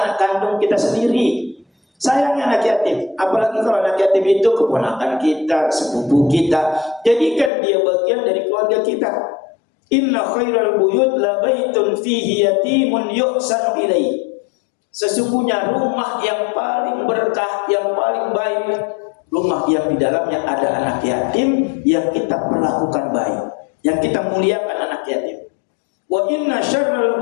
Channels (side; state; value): right; drops out; at 7.5 s